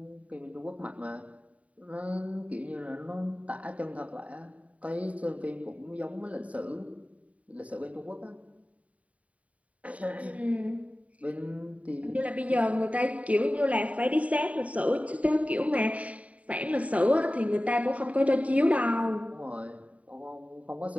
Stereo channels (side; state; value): left; late; 0.068 ms